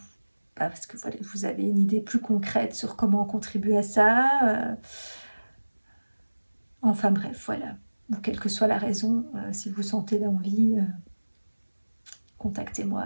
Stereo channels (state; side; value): inverted; both; correlation -1.00